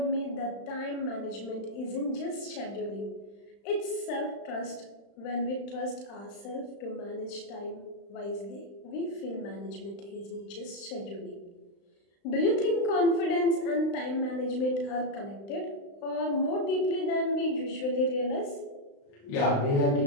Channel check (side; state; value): right; late; 35 ms